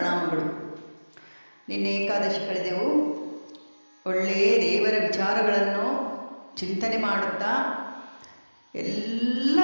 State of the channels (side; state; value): both; inverted; correlation -1.00